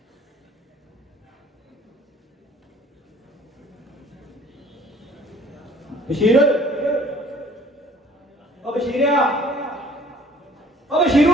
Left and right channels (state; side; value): normal; both; correlation 0.54